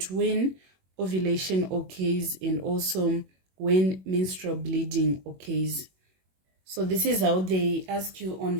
when ovulation occurs, and also when menstrual bleeding occurs. So this is how they ask you on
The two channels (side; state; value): left; late; 21 ms